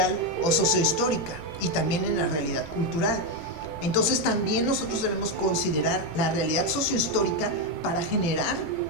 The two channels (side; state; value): right; late; 18 ms